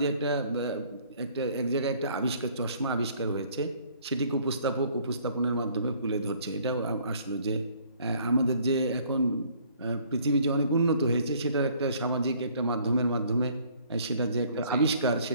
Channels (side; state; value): both; inverted; correlation -0.59